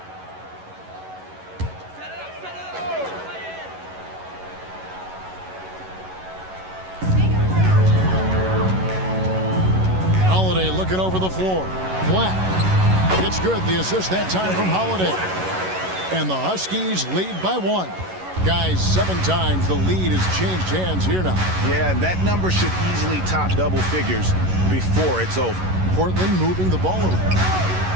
Holiday looking over the floor. Black. It's good. The assist that time from Holiday. And the Huskies lead by 1. Guys, 7 times the lead has changed hands here now. Yeah, that number should easily top double figures before it's over. Portland moving the ball around.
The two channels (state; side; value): late; left; 11 ms